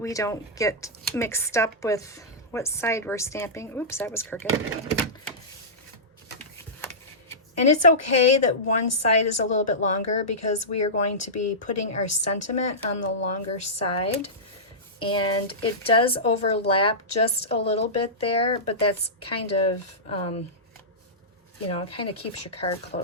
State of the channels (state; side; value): normal; both; correlation -0.16